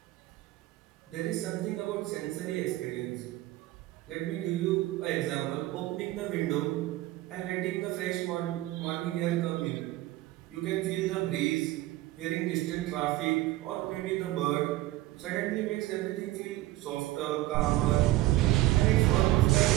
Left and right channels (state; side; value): quieter; left; 16.9 dB